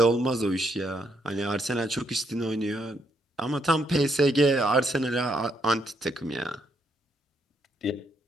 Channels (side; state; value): both; normal; correlation 0.74